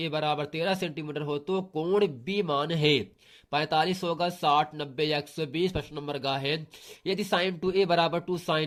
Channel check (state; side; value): identical; both; correlation 1.00